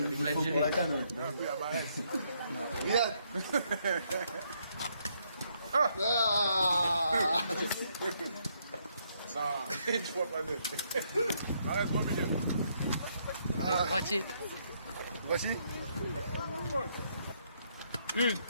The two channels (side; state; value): both; inverted; correlation -0.73